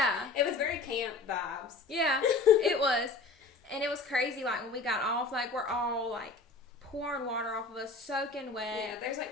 It was very camp vibes. Yeah, it was. And it was crazy, like when we got off, like we're all like pouring water off of us, soaking wet. Yeah, there's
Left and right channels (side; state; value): right; quieter; 3.7 dB